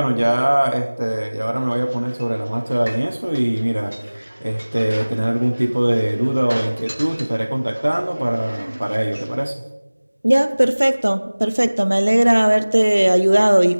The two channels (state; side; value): inverted; both; correlation -1.00